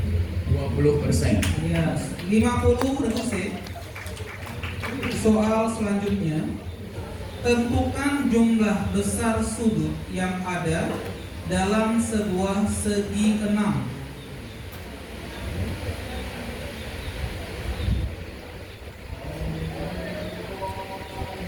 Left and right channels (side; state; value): both; identical; correlation 1.00